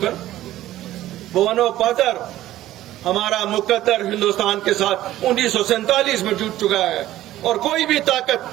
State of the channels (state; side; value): quieter; left; 14.4 dB